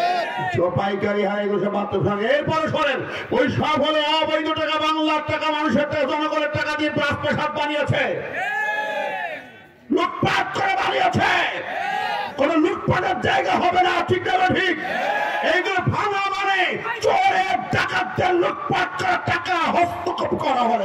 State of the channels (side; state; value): both; identical; correlation 1.00